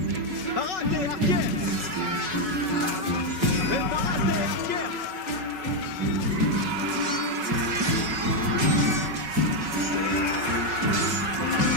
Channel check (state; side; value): late; left; 5.3 ms